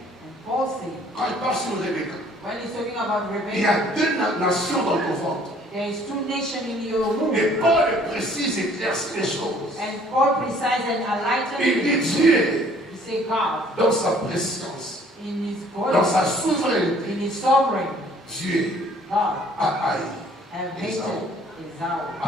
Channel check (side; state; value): both; normal; correlation 0.57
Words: Paul said, quand il parle sur Rebecca, when he's talking about il y Rebekah, a deux nations dans ton ventre. there is two nations in your womb. Et Paul précise et éclaircit les choses. And Paul precise and enlighten Il dit it. Dieu, He say God, dans sa préscience, in his dans body, sa souveraineté, in his sovereign, Dieu God, a haï, have hated Esau